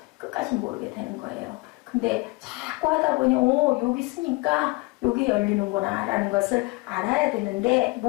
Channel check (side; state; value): right; quieter; 25.4 dB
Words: 끝까지 모르게 되는 거예요. 근데 자꾸 하다 보니 여기 있으니까 여기 열리는구나 라는 것을 알아야 되는데